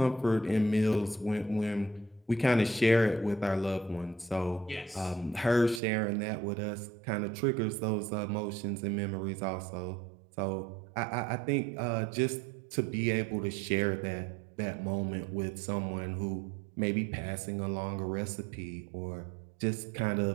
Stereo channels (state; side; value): drops out; left; at 5.8 s